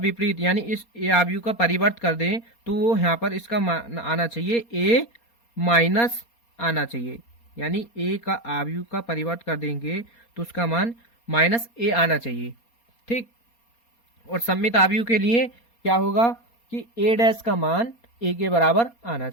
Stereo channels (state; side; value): late; right; 4.3 ms